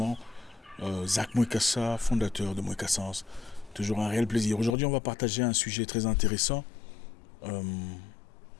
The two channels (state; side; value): drops out; right; at 4.8 s